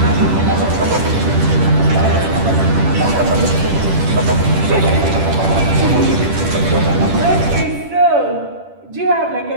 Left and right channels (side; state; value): left; late; 10 ms